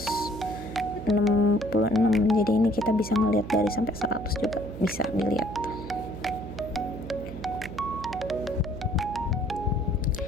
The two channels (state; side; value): noise; right; hum, 10 dB below the sound